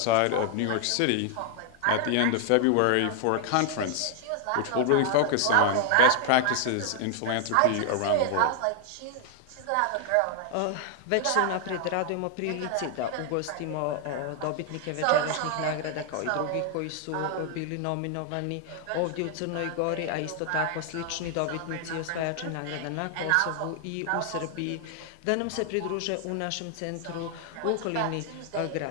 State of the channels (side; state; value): both; different; correlation 0.00